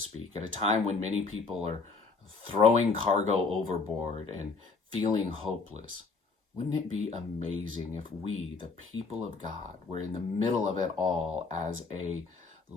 at a time when many people are throwing cargo overboard and feeling hopeless, wouldn't it be amazing if we, the people of God, were in the middle of it all as a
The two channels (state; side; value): quieter; right; 4.4 dB